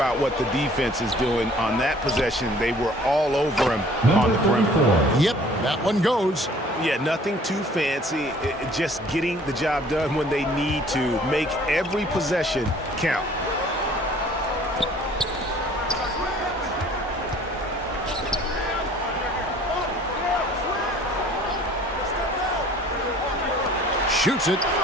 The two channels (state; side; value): normal; both; correlation 0.54